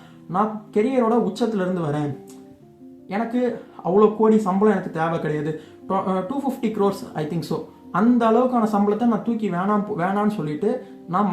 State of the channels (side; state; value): both; identical; correlation 1.00